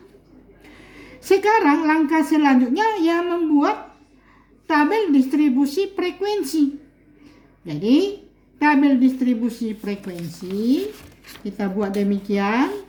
Sekarang langkah selanjutnya yang membuat tabel distribusi frekuensi. Jadi tabel distribusi frekuensi kita buat demikian,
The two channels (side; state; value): both; identical; correlation 1.00